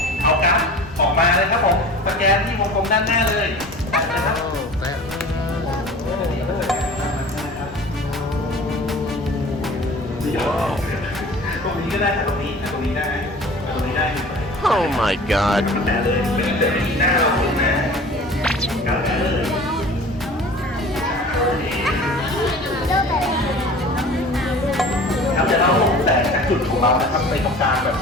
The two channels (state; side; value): normal; both; correlation 0.42